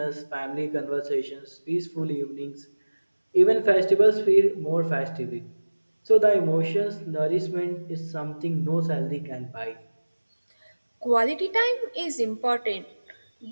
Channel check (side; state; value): both; inverted; correlation -1.00